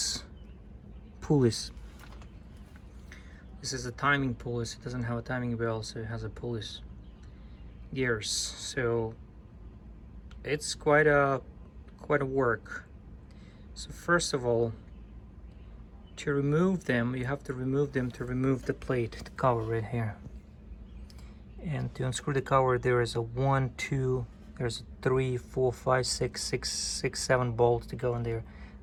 pulleys. This is a timing pulleys. It doesn't have a timing bell, so it has a pulleys gears, so it's quite a work. So first of all, to remove them, you have to remove them to remove the plate, the cover right here. And to unscrew the cover, there is a 1, 2, there's 3, 4, 5, 6, 7 bolts to go in there,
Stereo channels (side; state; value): both; identical; correlation 1.00